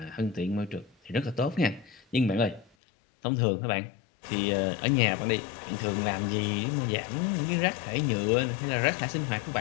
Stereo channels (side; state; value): right; drops out; at 2.7 s